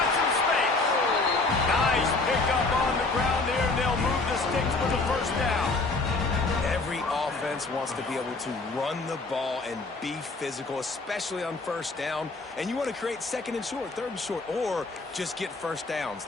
some space. Nice pickup on the ground there. They'll move the sticks for the first down. Every offense wants to be able to run the ball and be physical, especially on 1st down. And you want to create 2nd and short, 3rd and short, or just get 1st downs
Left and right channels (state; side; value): quieter; right; 3.5 dB